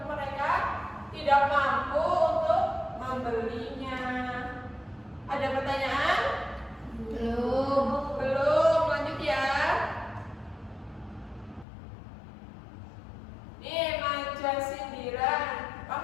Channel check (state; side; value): drops out; right; at 11.7 s